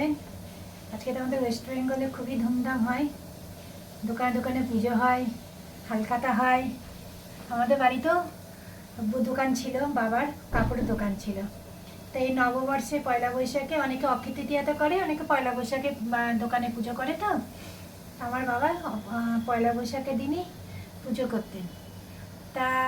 আজকে তো আমাদের ওয়েস্ট বেঙ্গলে খুবই ধুমধাম হয়, দোকানে দোকানে পুজো হয়, হালখাতা হয়। আমাদের বাড়িতেও দোকান ছিল, বাবার কাপড়ের দোকান ছিল। তো এই নববর্ষে পয়লা বৈশাখে অনেকে অক্ষয় তৃতীয়াতে করে, অনেকে পয়লা বৈশাখে দোকানে পুজো করে। তো আমার বাবা পয়লা বৈশাখের দিনই পুজো করতেন। তা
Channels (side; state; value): both; identical; correlation 1.00